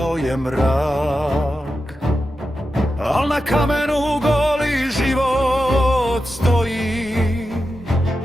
je mrak. Al na kamenu goli život stoji,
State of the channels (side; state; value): both; normal; correlation 0.90